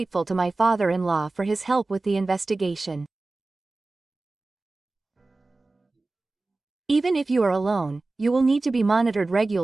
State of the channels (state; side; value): quieter; left; 3.3 dB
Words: to my father-in-law for his help with the investigation. Even if you are alone, you will need to be monitored